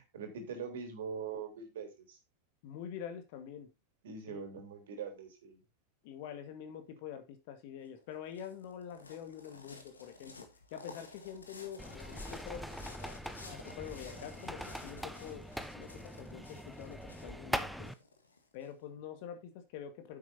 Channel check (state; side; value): normal; both; correlation 0.25